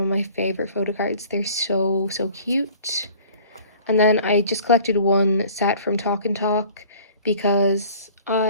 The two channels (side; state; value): both; inverted; correlation -0.49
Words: my favorite photo cards. They're so cute. And then I just collected one set from Talk and Talk because